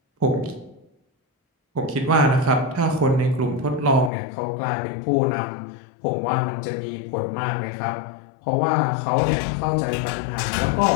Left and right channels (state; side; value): drops out; right; at 4.1 s